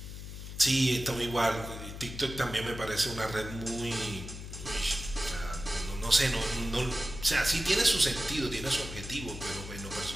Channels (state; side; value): noise; left; hum, 10 dB below the sound